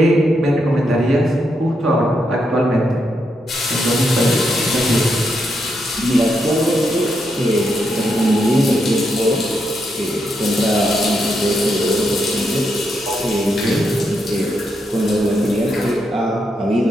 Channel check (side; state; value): both; normal; correlation 0.81